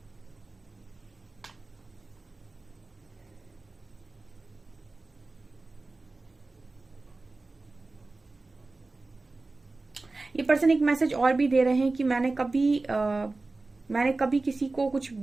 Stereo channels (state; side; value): quieter; left; 3.4 dB